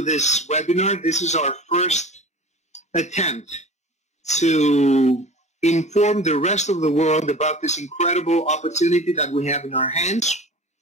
this webinar. This is our first attempt to inform the rest of the world about this incredible opportunity that we have in our hands.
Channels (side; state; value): both; normal; correlation 0.38